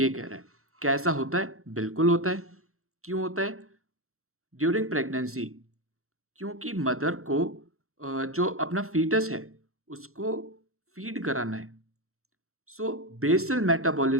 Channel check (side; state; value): left; late; 0.63 ms